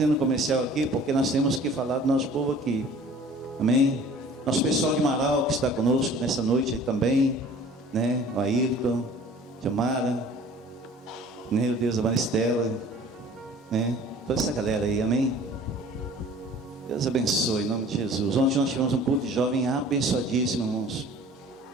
um comercial aqui porque nós temos que falar do nosso povo aqui. Amém? Nosso pessoal de Marau que está conosco nessa noite aí também, né? O Ayrton, Jamara, meu Deus, a Maristela, né? Toda essa galera aí, amém? Deus abençoe, em nome de Jesus. Ontem nós tivemos um culto de jovem abençoadíssimo, irmãos.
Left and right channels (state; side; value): normal; both; correlation 0.48